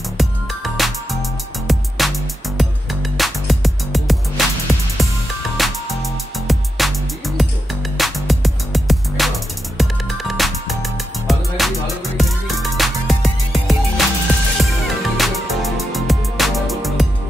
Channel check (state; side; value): normal; both; correlation 0.86